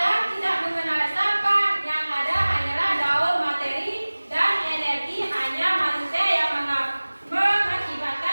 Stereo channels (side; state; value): both; inverted; correlation -1.00